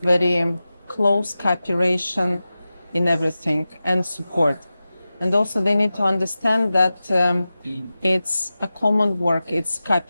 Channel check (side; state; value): both; inverted; correlation -0.95